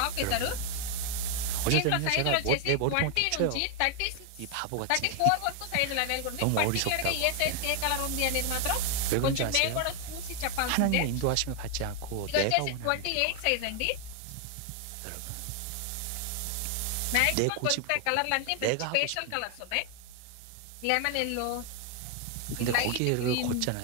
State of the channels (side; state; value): both; different; correlation 0.00